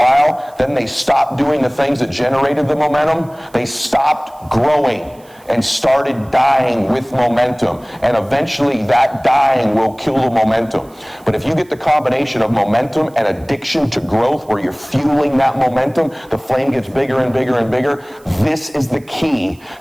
then they stopped doing the things that generated the momentum. They stopped growing and started dying with momentum. And eventually that dying will kill the momentum. But if you get the combination of momentum and addiction to growth where you're fueling that momentum, the flame gets bigger and bigger and bigger. This is the key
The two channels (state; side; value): noise; right; hiss, 29 dB below the sound